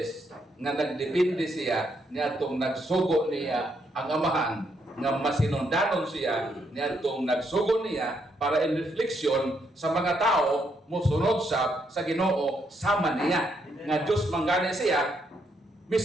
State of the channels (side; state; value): both; normal; correlation 0.76